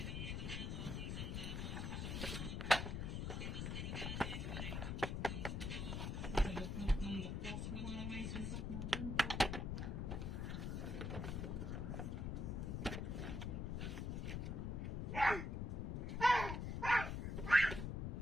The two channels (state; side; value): noise; left; rumble, 2 dB below the sound